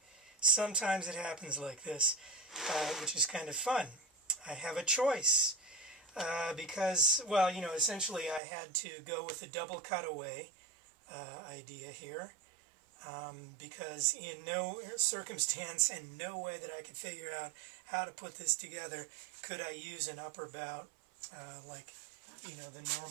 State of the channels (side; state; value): left; drops out; at 8.4 s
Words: Sometimes it happens like this, which is kind of fun. I have a choice. Because, well, essentially I had to go with the double cutaway idea here. Because in no circumstance and no way that I could figure out how to put this together could I use an upper bout like the